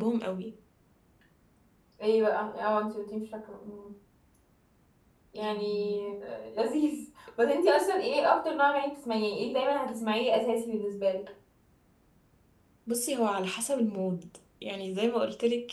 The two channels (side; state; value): both; identical; correlation 1.00